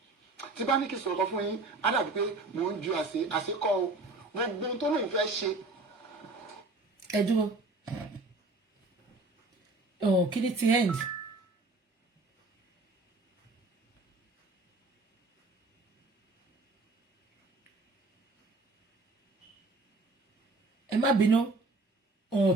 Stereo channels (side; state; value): left; quieter; 3.1 dB